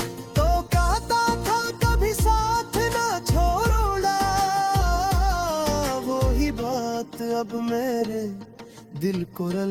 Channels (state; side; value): identical; both; correlation 1.00